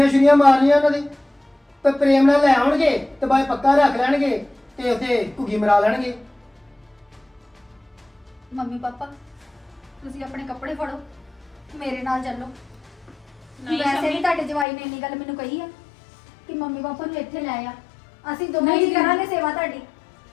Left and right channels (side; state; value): right; drops out; at 14.7 s